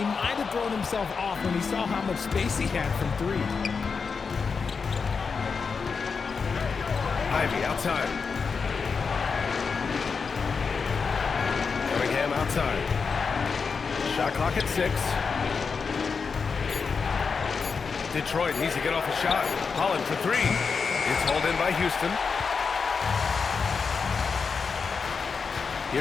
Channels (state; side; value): quieter; right; 5.3 dB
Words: might have thrown himself off when he saw how much space he had from 3. Ivy outside. Cunningham outside. Shot clock at 6. Detroit needs to get off a shot. Holland for 3. It's hauled in by Houston.